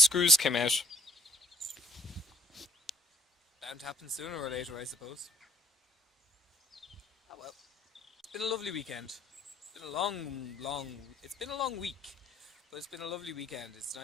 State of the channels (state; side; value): normal; both; correlation 0.60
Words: came out. Bound to happen sooner or later, I suppose. Oh well. It's been a lovely weekend. It's been a long week, but it's been a lovely weekend. It's